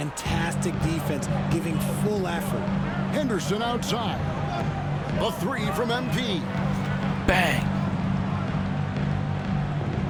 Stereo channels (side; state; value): both; identical; correlation 1.00